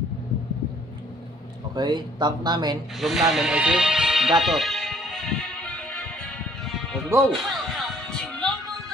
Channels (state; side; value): normal; both; correlation 0.61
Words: Okay. Tank namin, room namin ay si Gatot. Let's go!